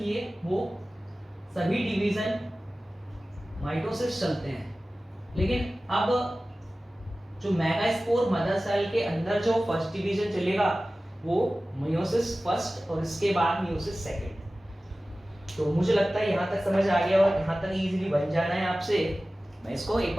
वो सभी डिवीजन माइटोसिस चलते हैं। लेकिन अब जो मेगास्पोर मदर सेल के अंदर जो फर्स्ट डिवीजन चलेगा वो मियोसिस फर्स्ट और इसके बाद मियोसिस सेकंड। तो मुझे लगता है यहाँ तक समझ आ गया और यहाँ तक इजीली बन जाना है आपसे। मैं इसको एक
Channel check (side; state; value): both; normal; correlation 0.96